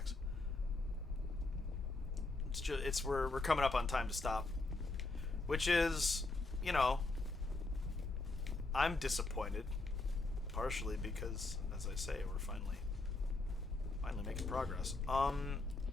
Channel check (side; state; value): right; quieter; 3.2 dB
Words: It's we're coming up on time to stop. Which is, you know, I'm disappointed, partially because, as I say, we're finally making progress.